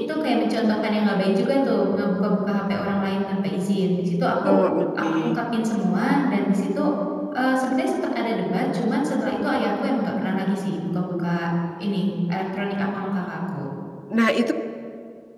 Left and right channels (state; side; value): identical; both; correlation 1.00